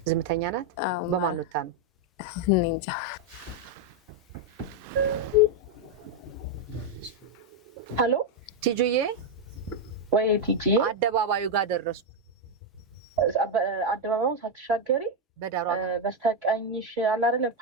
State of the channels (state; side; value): normal; both; correlation 0.02